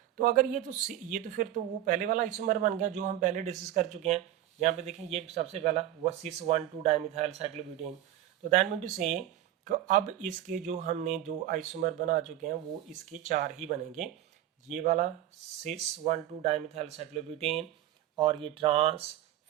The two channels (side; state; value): left; quieter; 12.6 dB